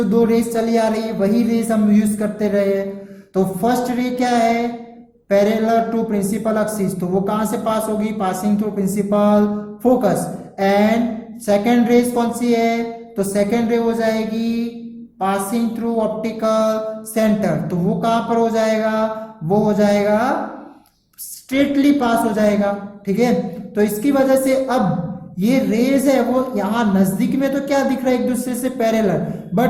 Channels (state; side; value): identical; both; correlation 1.00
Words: 2 रेज चली आ रही है वही रेज हम यूज करते रहे। तो फर्स्ट रे क्या है, पैरेलल टू प्रिंसिपल एक्सिस, तो वो कहां से पास होगी, passing through principal focus. And second rays कौन सी है, तो सेकेंड रे हो जाएगी पासिंग थ्रू ऑप्टिकल सेंटर, तो वो कहां पर हो जाएगा, वो हो जाएगा स्ट्रेटली पास हो जाएगा, ठीक है। तो इसकी वजह से अब ये रेज है वो यहां नजदीक में तो क्या दिख रहा है, एक दूसरे से पैरेलल,